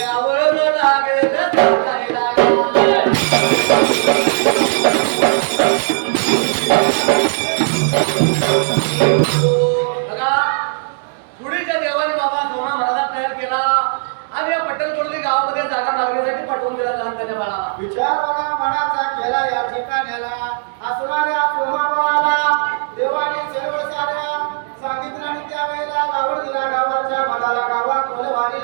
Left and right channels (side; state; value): left; silent; digital silence